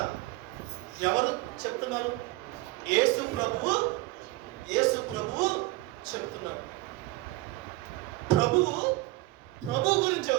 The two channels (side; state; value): left; quieter; 20.6 dB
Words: ఎవరు చెప్తున్నారు? యేసు ప్రభువు చెప్తున్నాడు. ప్రభువు గురించి